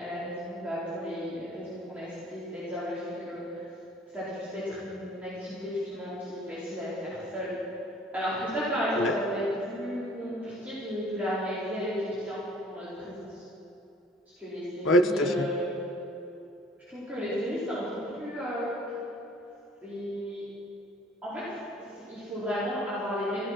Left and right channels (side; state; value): both; normal; correlation 0.53